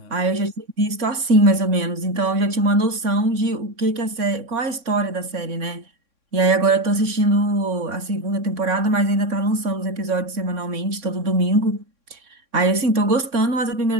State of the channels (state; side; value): late; left; 3.6 ms